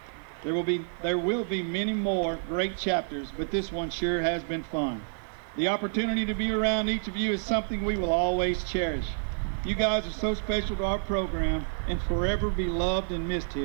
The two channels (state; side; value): silent; left; 59 dB below the other